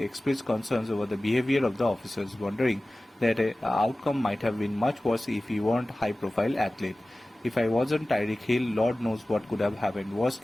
expressed concerns over the behavior of the officers, wondering that an outcome might have been much worse if he weren't a high-profile athlete. "If I wasn't Tyreek Hill, Lord knows what could have happened. Worst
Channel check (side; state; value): both; normal; correlation 0.97